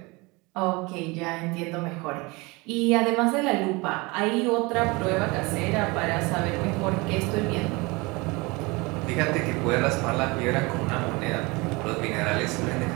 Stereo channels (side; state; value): left; quieter; 25.3 dB